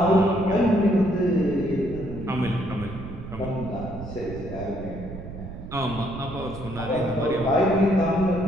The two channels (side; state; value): right; noise; rumble, 11 dB below the sound